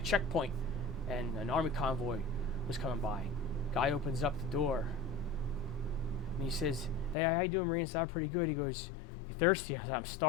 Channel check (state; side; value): drops out; right; at 7.2 s